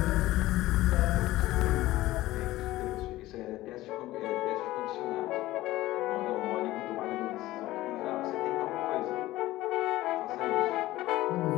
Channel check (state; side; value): quieter; right; 16.8 dB